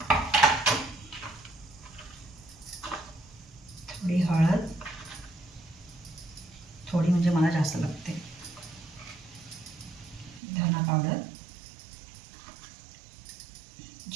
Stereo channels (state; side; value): drops out; left; at 10.4 s